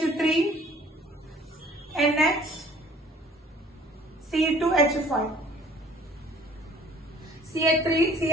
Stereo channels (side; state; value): both; normal; correlation 0.54